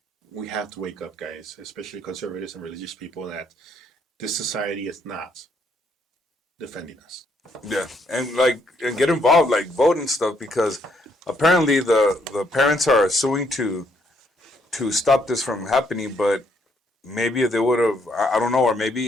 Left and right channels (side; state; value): both; normal; correlation 0.71